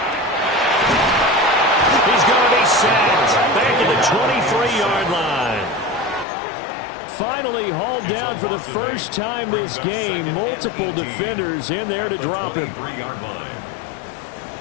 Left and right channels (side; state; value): right; drops out; at 6.2 s